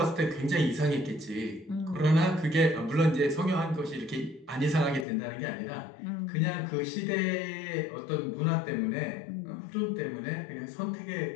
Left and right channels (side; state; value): right; drops out; at 5.1 s